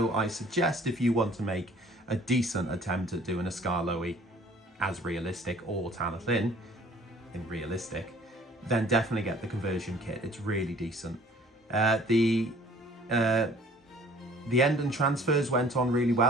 I suggest if you want to make a decent attempt at doing a Skarloey as realistic, or Talyllyn in realistic, then definitely get the conversion kit. It's really decent. The end and transfers went on really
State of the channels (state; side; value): normal; both; correlation 0.53